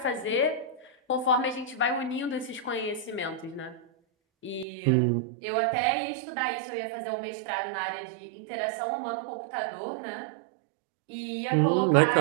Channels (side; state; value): left; drops out; at 4.7 s